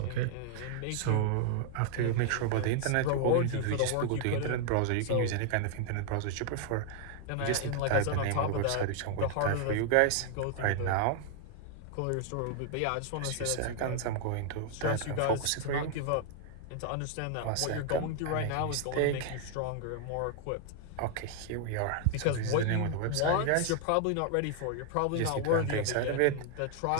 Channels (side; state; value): both; different; correlation 0.00